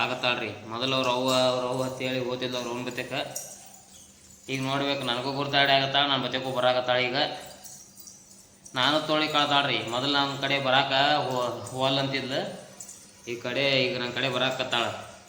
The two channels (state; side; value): identical; both; correlation 1.00